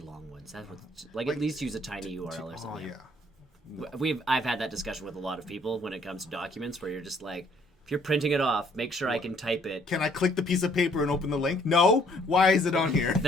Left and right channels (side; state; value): both; normal; correlation 0.63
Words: ones. That's what, like at least use a tiny URL or something. Oh yeah. I've had that discussion with a lot of people when it comes to documents where you're just like, if you're printing it off, make sure I can type it. Can I click the piece of paper and open the link? No. Why is it on here?